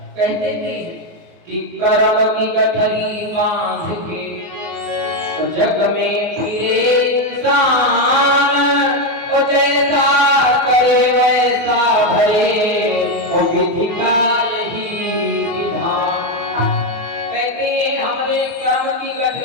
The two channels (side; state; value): left; late; 24 ms